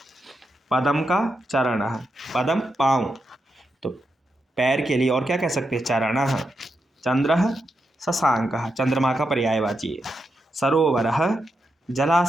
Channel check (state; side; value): normal; both; correlation 0.85